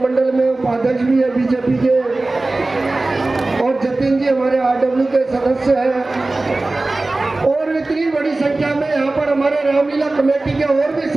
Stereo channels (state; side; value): quieter; left; 3.1 dB